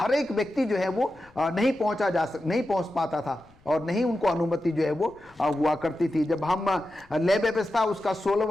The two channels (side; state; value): left; noise; rumble, 29 dB below the sound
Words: एक व्यक्ति जो है वो नहीं पहुँच पाता था, और नहीं उनको अनुमति जो है वो हुआ करती थी। जब हम लय व्यवस्था उसका